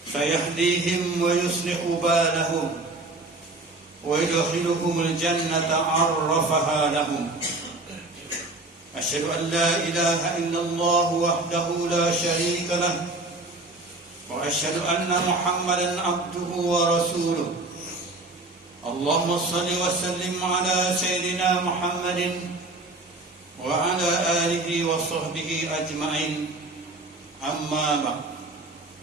سيهديهم ويصلح بالهم ويدخلهم الجنة عرفها لهم. أشهد أن لا إله إلا الله وحده لا شريك له وأشهد أن محمدا عبده ورسوله. اللهم صل وسلم على سيدنا محمد وعلى آله وصحبه أجمعين. أما بعد،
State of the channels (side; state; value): left; quieter; 3.0 dB